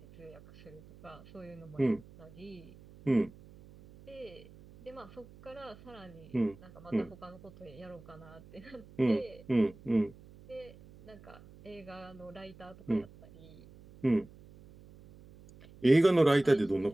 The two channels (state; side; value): noise; right; hum, 21 dB below the sound